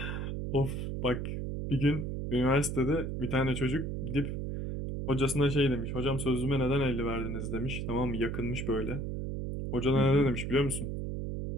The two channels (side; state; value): right; noise; hum, 3 dB below the sound